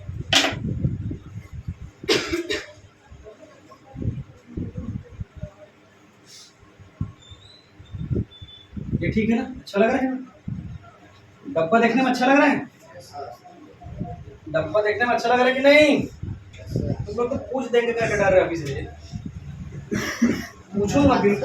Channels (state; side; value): identical; both; correlation 1.00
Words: ये ठीक है ना, अच्छा लग रहा है, डब्बा देखने में अच्छा लग रहा है, डब्बा देखने में अच्छा लग रहा है कि नहीं। तुम लोग तो पूछ देंगे क्या डर रहे अभी से। पूछूंगा,